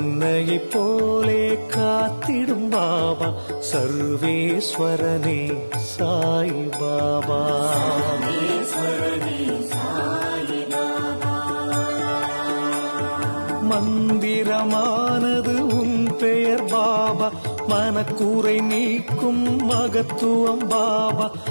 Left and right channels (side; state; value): both; inverted; correlation -1.00